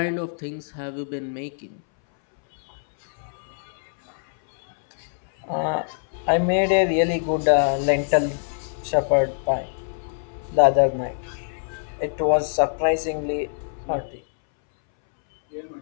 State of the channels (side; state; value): right; silent; 62 dB below the other